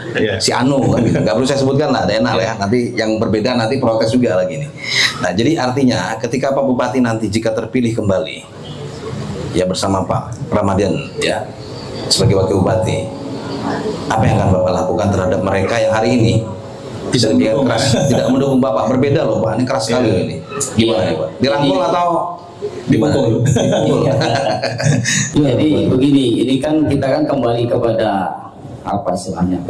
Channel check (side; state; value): both; identical; correlation 1.00